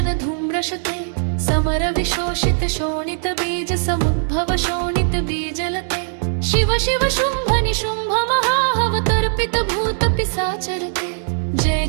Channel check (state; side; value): silent; left; digital silence